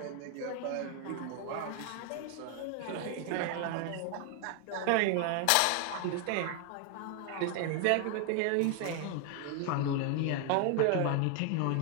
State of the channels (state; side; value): different; both; correlation 0.00